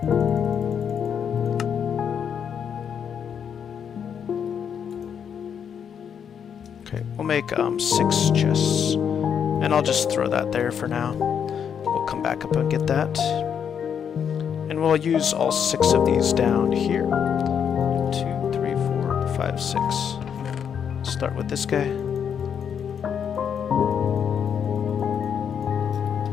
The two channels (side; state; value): right; quieter; 7.8 dB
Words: Okay, we'll make 6 chests. And I'll just throw that there for now. We'll come back up and get that. And we'll use all 6 of these down here. 2, 3, 4, 5, 6. Start with this guy.